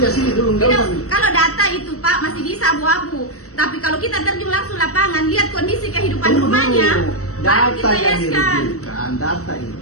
sini dulu, enggak Tidak, usah. kalau data itu Pak masih bisa abu-abu. Tapi kalau kita terjun langsung lapangan, lihat kondisi kehidupan rumahnya, baru Data kita yang yeskan. dirujukan, data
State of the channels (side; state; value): right; late; 0.65 ms